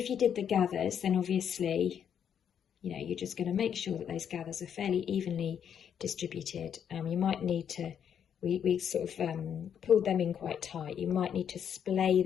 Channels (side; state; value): right; quieter; 8.4 dB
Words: you did the gathers, then obviously, you know, you're just gonna make sure that those gathers are fairly evenly distributed. You might need to, we sort of pulled them in quite tight. You might need to splay